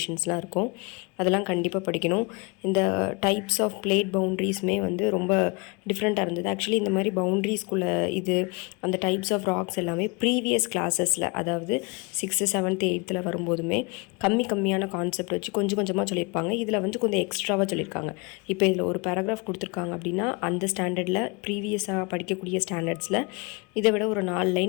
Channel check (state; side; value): quieter; right; 29.8 dB